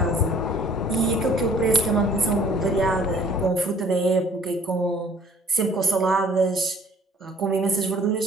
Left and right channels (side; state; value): both; normal; correlation 0.55